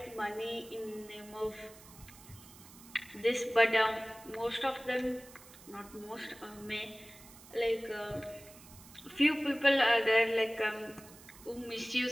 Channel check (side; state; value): right; noise; hiss, 20 dB below the sound